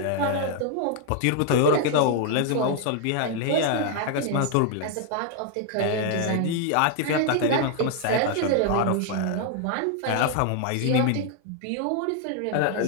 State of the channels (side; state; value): both; different; correlation 0.00